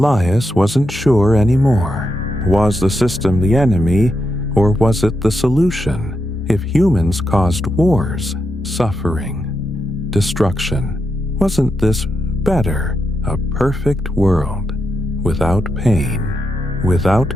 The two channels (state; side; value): normal; both; correlation 0.84